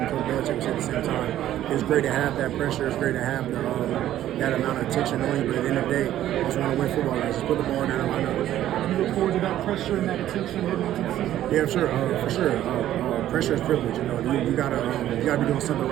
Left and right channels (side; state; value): left; quieter; 12.6 dB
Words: Coach Belichick said at the same time. It's great to have that pressure. It's great to have that amount of attention on you, but at the end of the day, I just want to win football games. Just put the ball down and line up. You look forward to that pressure and that attention heading into the season? Yeah, sure, for sure. Pressure is privilege. You know, you gotta be doing something